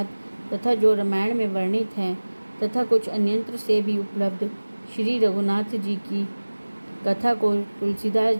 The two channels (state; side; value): inverted; both; correlation -1.00